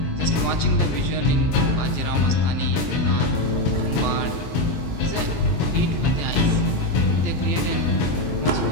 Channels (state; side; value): late; right; 24 ms